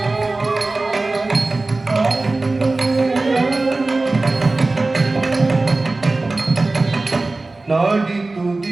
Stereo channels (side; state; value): left; quieter; 3.2 dB